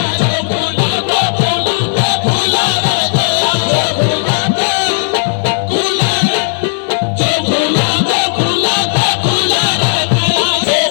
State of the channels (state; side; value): silent; right; 72 dB below the other